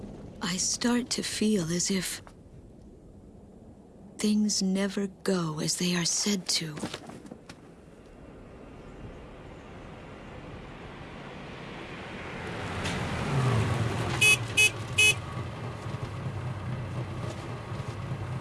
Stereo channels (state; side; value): identical; both; correlation 1.00